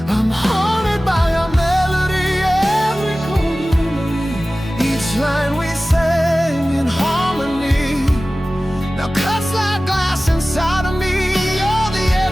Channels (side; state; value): both; normal; correlation 0.97